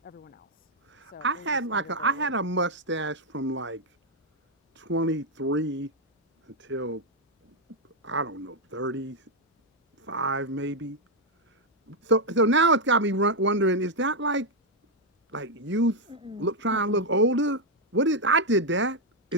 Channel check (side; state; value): both; normal; correlation -0.01